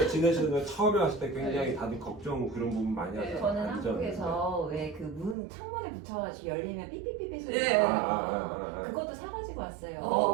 지내시는 처음에 왔을 때 굉장히 다들 걱정 그런 부분 많이 하잖아요. 저는 안전. 한국에서 왜 그 문 창문에 붙여가지고 열리면 삐삐삐삐 소리 예. 나요. 그것도 사가지고 왔어요.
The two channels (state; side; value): drops out; left; at 5.4 s